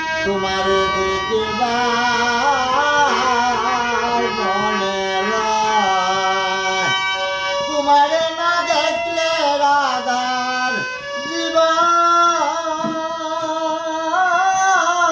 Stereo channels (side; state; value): both; identical; correlation 1.00